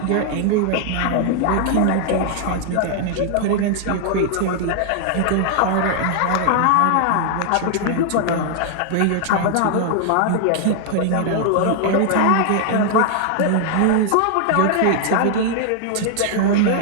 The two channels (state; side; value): different; both; correlation 0.00